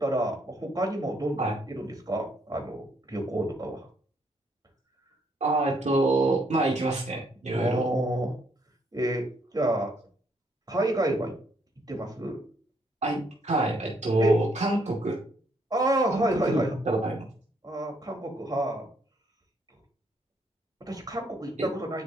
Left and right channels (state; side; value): normal; both; correlation 0.71